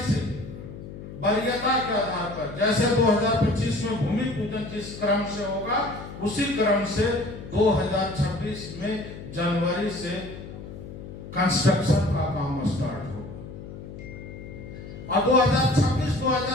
से वरीयता के आधार पर, जैसे 2025 में भूमि पूजन जिस क्रम से होगा, उसी क्रम से 2026 में जनवरी से कंस्ट्रक्शन का काम स्टार्ट होगा। और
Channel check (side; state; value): left; noise; hum, 12 dB below the sound